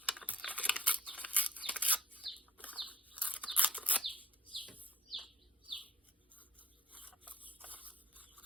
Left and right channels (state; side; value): normal; both; correlation 0.57